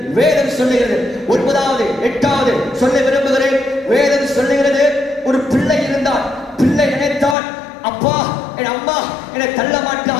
9வது 8வது சொல்ல விரும்புகிறேன். வேதம் சொல்லுகிறது, ஒரு பிள்ளை இருந்தான். பிள்ளை நினைத்தான், அப்பா என் அம்மா என்னை தள்ள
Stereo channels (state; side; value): drops out; right; at 7.4 s